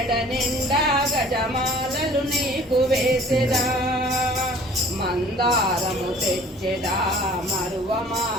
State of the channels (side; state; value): both; normal; correlation 0.50